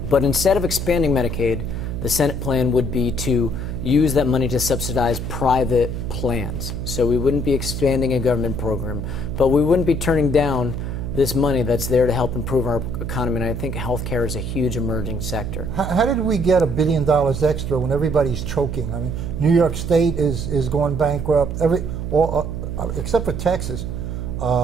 But instead of expanding Medicaid, the Senate plan would be to use that money to subsidize private plans. So we wouldn't be expanding a government program, but we wouldn't be turning down this money that's there to help improve our economy, and I think healthcare is a huge emerging sector. How did we get $1 billion extra when everybody's choking? I mean, New York State is going bankrupt, except for Texas.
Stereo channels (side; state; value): right; noise; hum, 4 dB below the sound